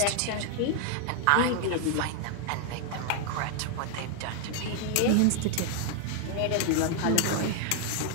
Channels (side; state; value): both; different; correlation 0.00